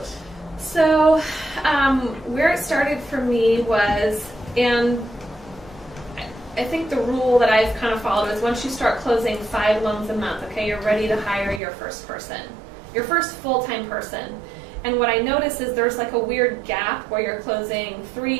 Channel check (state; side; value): drops out; left; at 11.6 s